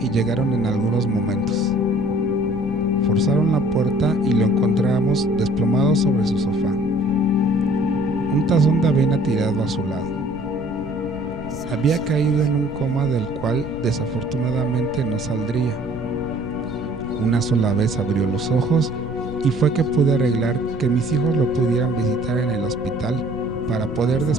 y llegaron en algunos momentos. Forzaron la puerta y lo encontramos desplomado sobre su sofá. Un tazón de avena tirado a su lado. Había caído en un coma del cual desafortunadamente no saldría. Una sola vez abrió los ojos y fue que pude arreglar que mis hijos lo pudieran visitar en el hospital para poder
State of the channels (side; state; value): left; noise; rumble, 14 dB below the sound